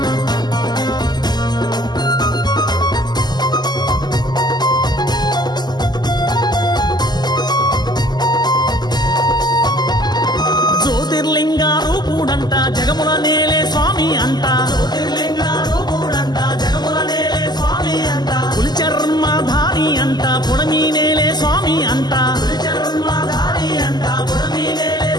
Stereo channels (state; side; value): late; right; 0.20 ms